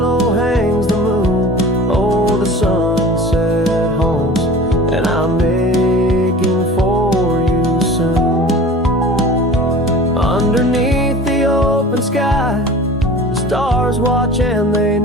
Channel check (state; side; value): normal; both; correlation 0.41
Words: hangs the moon. Oh, the sunset haunts, and I'm aching for you soon. Underneath the open sky, the stars watch and they